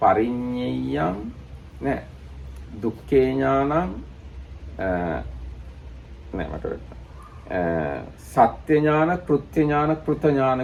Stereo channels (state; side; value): identical; both; correlation 1.00